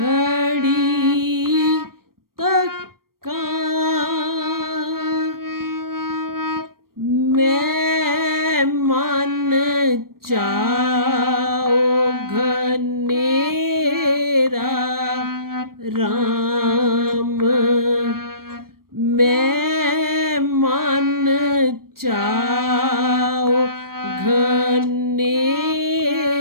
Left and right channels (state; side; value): late; left; 0.93 ms